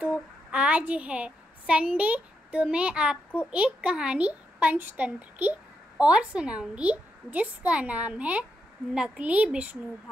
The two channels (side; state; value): both; normal; correlation 0.82